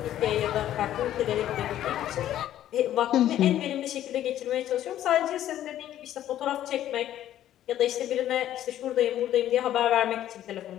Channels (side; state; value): right; quieter; 12.2 dB